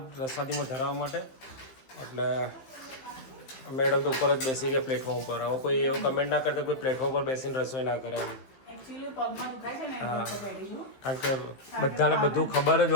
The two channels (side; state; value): right; late; 15 ms